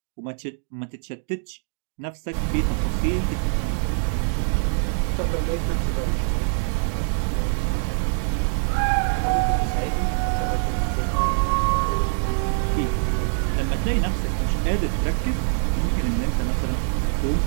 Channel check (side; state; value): left; silent; 63 dB below the other